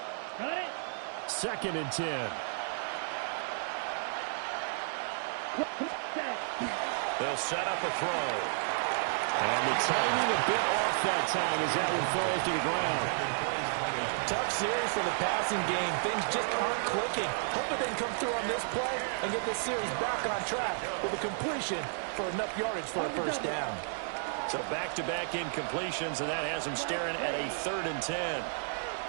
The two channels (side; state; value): left; silent; digital silence